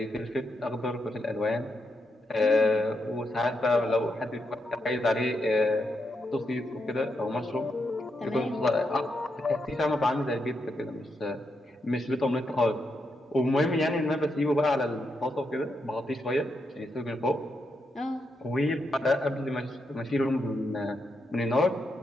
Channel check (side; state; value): both; normal; correlation 0.82